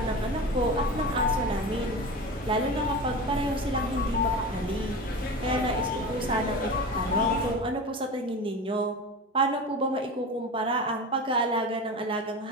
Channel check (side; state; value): both; normal; correlation 0.29